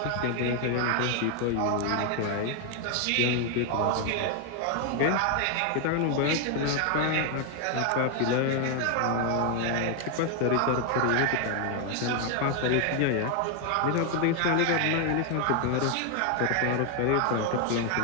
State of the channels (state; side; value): different; both; correlation 0.00